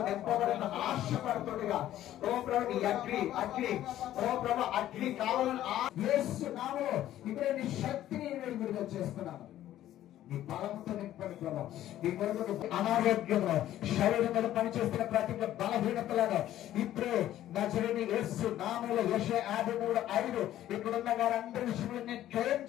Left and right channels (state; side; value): quieter; right; 12.9 dB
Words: నింపబడిన ఆశపడుతుండగా ఓ ప్రభు నీ అగ్ని కావాలని యేసు నామములో ఇప్పుడే నీ శక్తిని విడుదల చేస్తున్నాను. నీ బలంతో నింపండి ప్రభు. నీ కొరకు అనారోగ్యంలో శరీరం మీద పనిచేస్తున్న ప్రతి బలహీనతలను ఇప్పుడే నజరేయుడైన యేసు నామములో యెషయా 53:5 ఇక్కడున్న వారందరి విషయంలో నేను క్లెయిమ్